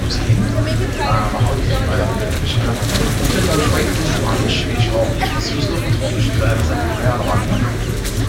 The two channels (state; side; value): identical; both; correlation 1.00